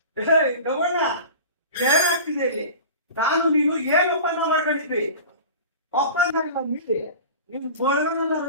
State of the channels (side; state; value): both; inverted; correlation -0.36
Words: ಗವಣ್ಣ ಏನಾಗ್ತಿದೆ ಇಲ್ಲಿ? ನಾನು ನೀನು ಏನು ಒಪ್ಪಂದ ಮಾಡ್ಕೊಂಡಿದ್ವಿ? ಒಪ್ಪಂದ ಇಲ್ಲ ಮೀರಿ ನೀನು ಬೋಳ್ಗನೆಲ್ಲ